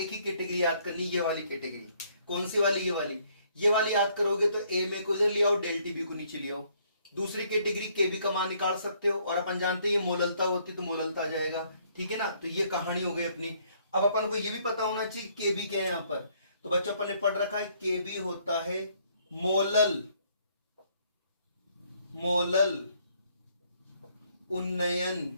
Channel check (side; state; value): both; inverted; correlation -0.66